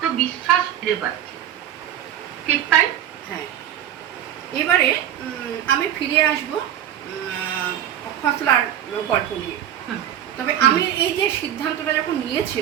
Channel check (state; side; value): quieter; left; 10.7 dB